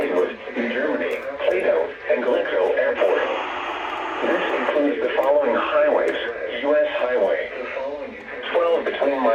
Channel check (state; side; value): identical; both; correlation 1.00